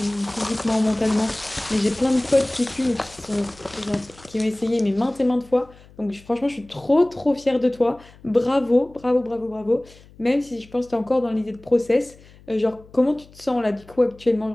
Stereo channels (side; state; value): left; noise; hum, 24 dB below the sound